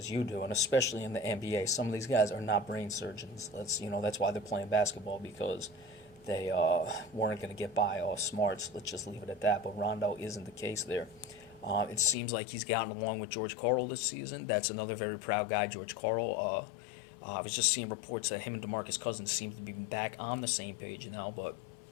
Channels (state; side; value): drops out; right; at 12.2 s